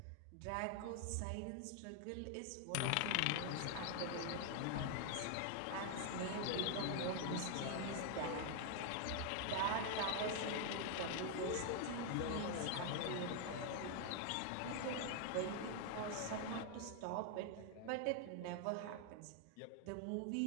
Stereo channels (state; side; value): different; both; correlation 0.00